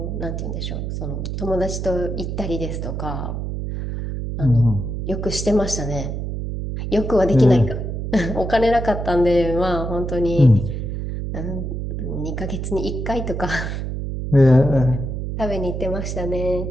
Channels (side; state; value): right; noise; hum, 4 dB below the sound